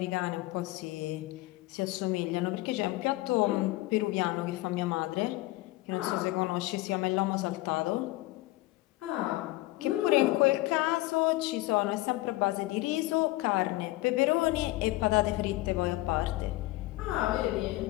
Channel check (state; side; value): quieter; right; 19.0 dB